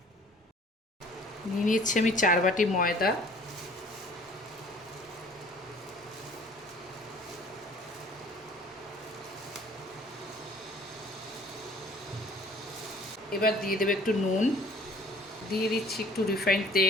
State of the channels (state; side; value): normal; both; correlation 0.53